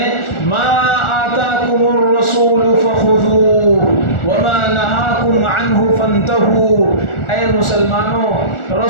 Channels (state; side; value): late; right; 1.4 ms